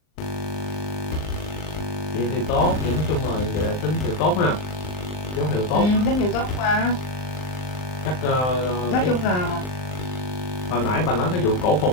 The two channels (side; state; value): right; late; 39 ms